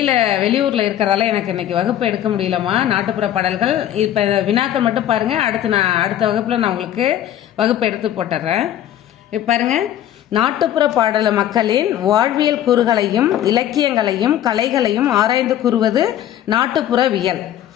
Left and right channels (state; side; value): quieter; right; 11.6 dB